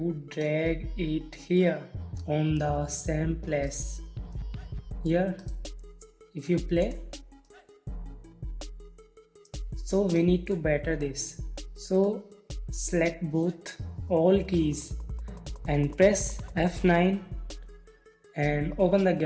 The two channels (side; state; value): both; identical; correlation 1.00